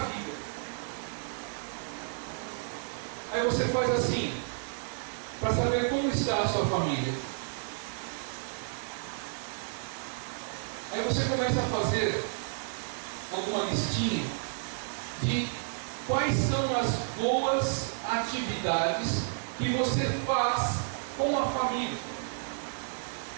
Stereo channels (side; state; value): left; silent; 57 dB below the other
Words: Aí você faz assim, para saber como está a sua família. Aí você começa a fazer alguma listinha de quais são as boas atividades que você faz com a família.